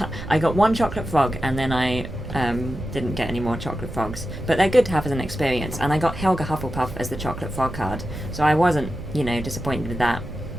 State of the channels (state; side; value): noise; right; rumble, 11 dB below the sound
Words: got one chocolate frog, and then I didn't get any more chocolate frogs. But they're good to have as an experience. And I got Helga Hufflepuff as the chocolate frog card, so I wasn't, disappointed with that.